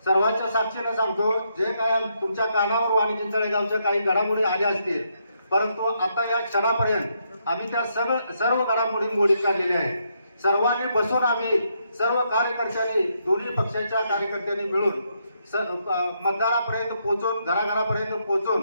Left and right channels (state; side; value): inverted; both; correlation -0.77